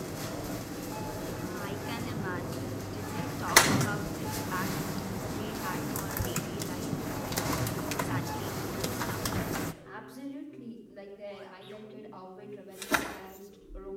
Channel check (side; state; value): both; identical; correlation 1.00